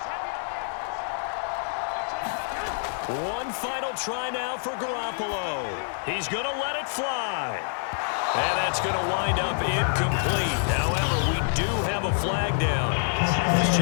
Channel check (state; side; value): silent; right; digital silence